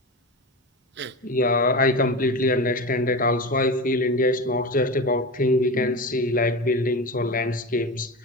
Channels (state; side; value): normal; both; correlation 0.25